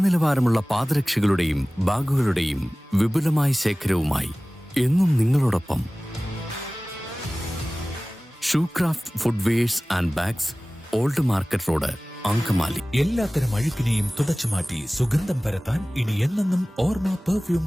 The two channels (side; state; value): both; normal; correlation 0.98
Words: പാദരക്ഷകളുടെയും ബാഗുകളുടെയും വിപുലമായ ശേഖരവുമായി എന്നും നിങ്ങളോടൊപ്പം Shoecraft footwears and bags, old market road, Angamaly. എല്ലാത്തരം അഴുക്കിനെയും തുടച്ചുമാറ്റി സുഗന്ധം പരത്താൻ ഇനി എന്നെന്നും ഓർമ്മ